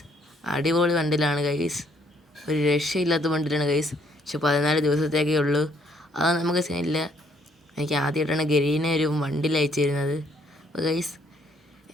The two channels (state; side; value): normal; both; correlation 0.67